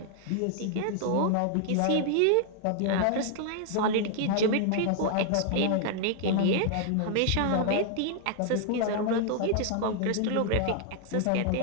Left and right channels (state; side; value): different; both; correlation 0.00